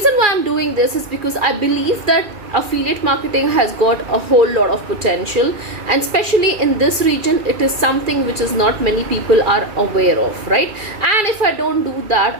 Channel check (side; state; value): left; late; 2.4 ms